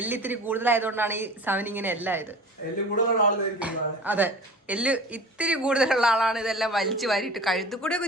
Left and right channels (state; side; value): normal; both; correlation 0.38